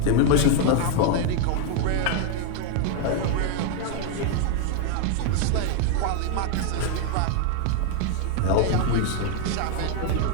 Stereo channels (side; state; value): both; different; correlation 0.00